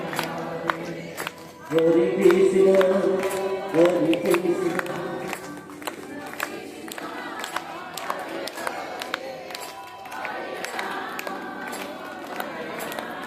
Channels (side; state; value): both; identical; correlation 1.00